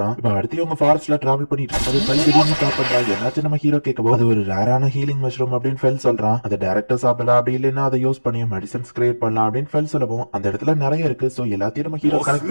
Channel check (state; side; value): inverted; both; correlation -1.00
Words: இப்ப அடுத்து அவங்க ஃபாரஸ்ட்ல டிராவல் பண்ணிட்டு இருக்கும்போது திடீர்னு சாப்பிடுறான். என்னாச்சு நம்ம ஹீரோ கேட்கவோ அது ஒரு ரேரான ஹீலிங் மஷ்ரூம் அப்படின்னு ஃபெல் சொல்றான். அதை டைரக்டா சாப்பிடலாம், அப்படி இல்லைன்னா அதை யூஸ் பண்ணி மெடிசன்ஸ் கிரியேட் பண்ணலாம் அப்படின்னு ஃபெல் சொல்லவும் அந்த இடத்துல நிறைய இருக்கு. சோ எல்லாத்தையும் நம்ம ஹீரோ கனெக்ட்